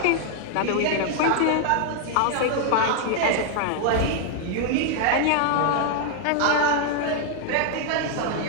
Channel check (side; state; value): both; different; correlation 0.00